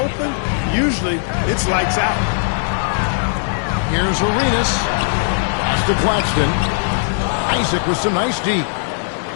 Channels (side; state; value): right; silent; digital silence